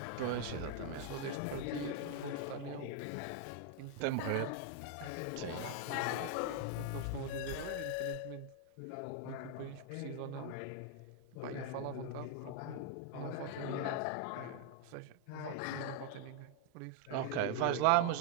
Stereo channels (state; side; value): different; both; correlation 0.00